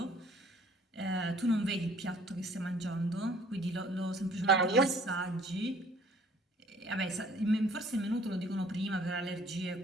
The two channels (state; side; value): normal; both; correlation 0.56